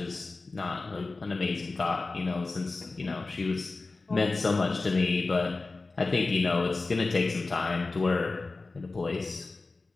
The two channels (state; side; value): quieter; right; 3.6 dB